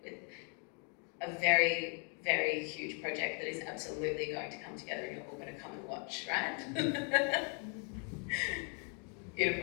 with a very, very huge project that is absolutely going to come together and you're all going to come and watch, right?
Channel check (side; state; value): right; quieter; 39.5 dB